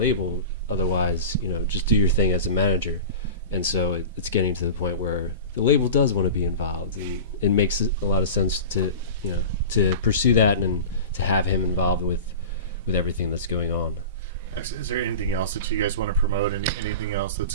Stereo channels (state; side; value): inverted; both; correlation -0.33